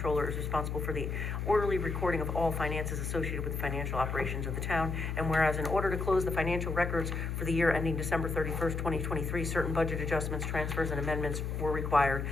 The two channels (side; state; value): left; noise; hum, 3 dB below the sound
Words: is responsible for the orderly recording of all finances associated with the financial operations of the town, and whereas in order to close the financial records for the year ending December 31st, 2023, certain budget adjustments, transfers, and amendments were required,